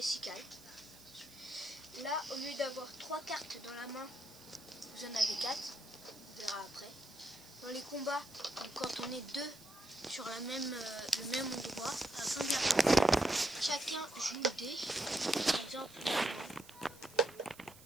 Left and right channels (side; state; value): right; noise; hiss, 20 dB below the sound